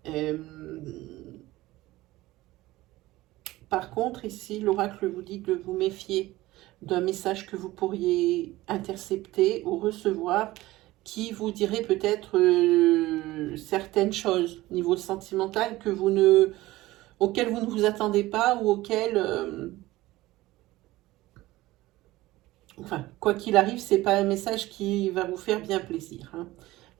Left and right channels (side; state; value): left; quieter; 17.9 dB